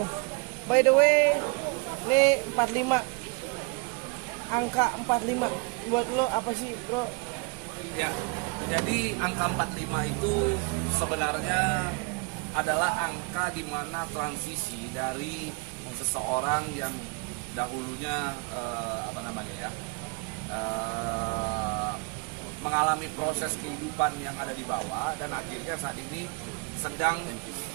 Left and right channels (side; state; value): left; quieter; 31.0 dB